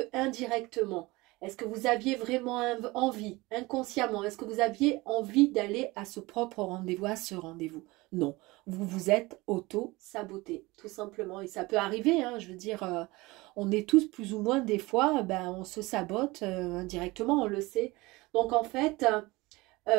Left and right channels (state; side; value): quieter; left; 21.9 dB